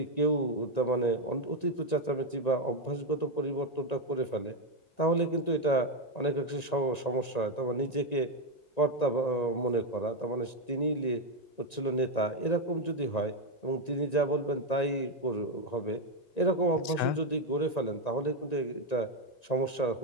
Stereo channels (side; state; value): right; late; 1.9 ms